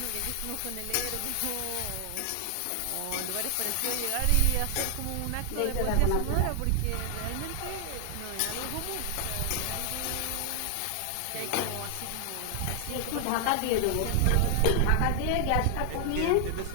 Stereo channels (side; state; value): both; different; correlation 0.00